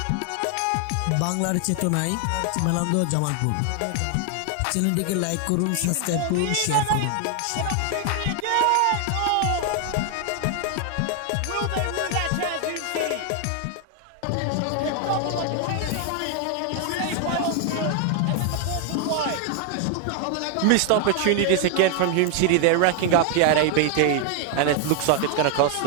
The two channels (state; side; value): different; both; correlation 0.00